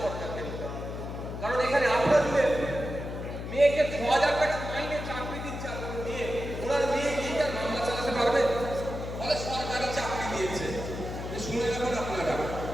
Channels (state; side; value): noise; left; hum, 7 dB below the sound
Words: সরকারকে নিতে হবে। কারণ এখানে আপনার মেয়েকে ৬,০০০ টাকা মাইনে চাকরি দিচ্ছে, আপনার মেয়ে, ওনার মেয়ে কি তার মামলা চালাতে পারবে? বলে সরকারি চাকরি দিয়েছে, শুনে রাখুন আপনারা,